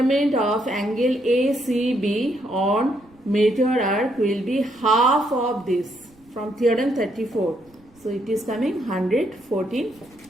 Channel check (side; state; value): right; noise; rumble, 30 dB below the sound